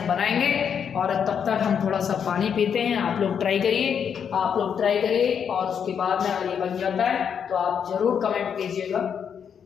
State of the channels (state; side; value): quieter; right; 7.6 dB